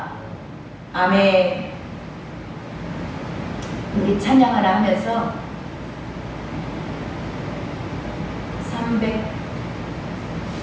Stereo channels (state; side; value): identical; both; correlation 1.00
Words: 아멘. 우리 찬양 하나 하면서 340